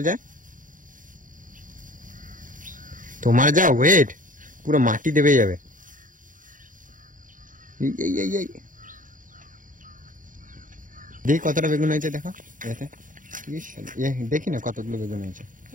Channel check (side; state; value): left; late; 0.38 ms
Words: যায়। তোমার যা ওয়েট, পুরো মাটি দেবে যাবে। দেখি কতটা বেগুন হয়েছে, দেখো এতে। দেখি না কতগুলো বেগুন হয়েছে।